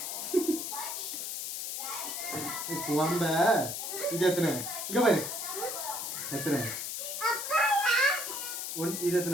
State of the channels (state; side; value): noise; left; hiss, 4 dB below the sound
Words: கும்பங்க இது எத்தனை இங்க பாரு எத்தனை இது